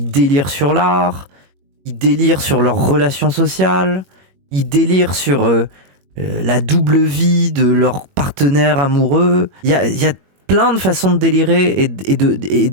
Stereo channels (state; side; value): late; left; 21 ms